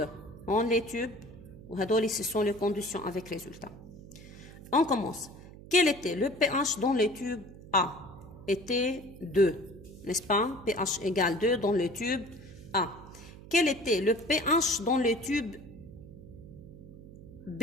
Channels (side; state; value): right; noise; hum, 17 dB below the sound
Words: On les tubes وهدول ce sont les conditions avec résultats. On commence. Quel était le pH dans le tube A? Était 2, n'est-ce pas? pH égale 2 dans le tube A. Quel était le pH dans le tube B?